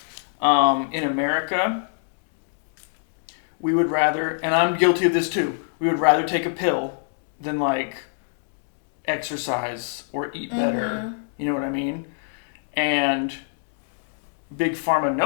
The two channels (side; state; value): right; silent; digital silence